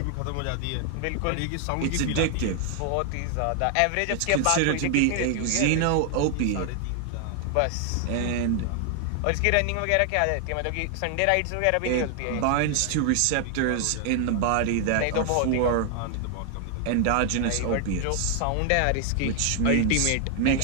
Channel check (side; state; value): both; different; correlation 0.00